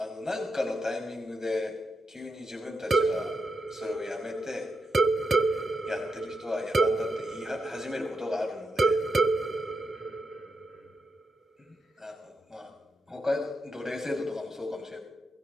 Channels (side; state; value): both; normal; correlation 0.85